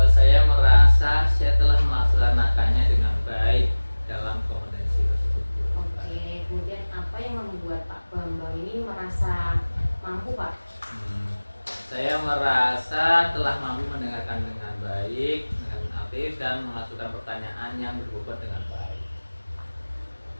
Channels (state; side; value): inverted; both; correlation -1.00